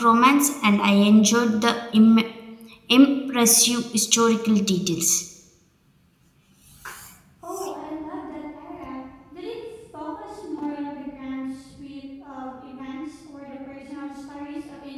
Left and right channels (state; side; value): identical; both; correlation 1.00